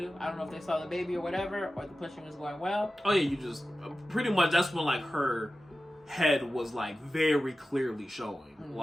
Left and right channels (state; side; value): normal; both; correlation 0.94